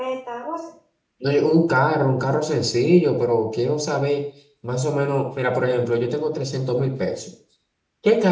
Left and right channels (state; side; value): identical; both; correlation 1.00